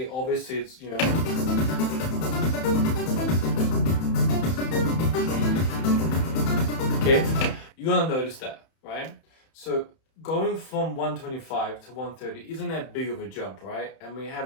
obviously it's, okay, you're gonna notice that, right? So going from 125 to 130 isn't that big of a jump, right? And we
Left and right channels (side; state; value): right; late; 31 ms